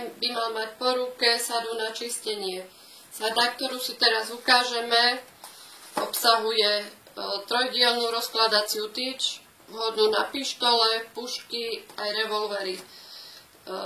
by mal mať po ruke sadu na čistenie. Sada, ktorú si teraz ukážeme, obsahuje trojdielnú rozkladaciu tyč, vhodnú na pištole, pušky aj revolvery.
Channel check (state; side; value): identical; both; correlation 1.00